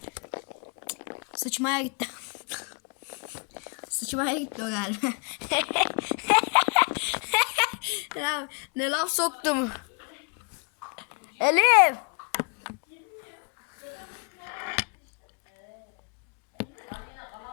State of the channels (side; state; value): right; quieter; 34.3 dB